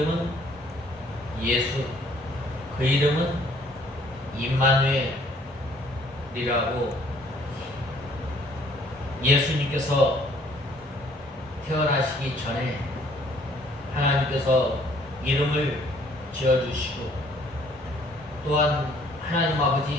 예수, 그 이름은 임마누엘이라고 예수님께서 태어나시기 전에 하나님께서 이름을 지어주시고, 또한 하나님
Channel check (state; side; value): normal; both; correlation 0.60